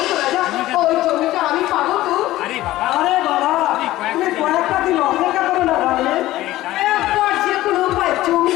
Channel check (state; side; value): quieter; right; 16.0 dB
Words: তো রাজা ওই জমিটা আমি পাবো তো আরে বাবা আরে বাবা তুমি কয়েকটা দিন অপেক্ষা করো না ভাই। একবার যে কোনো উপায়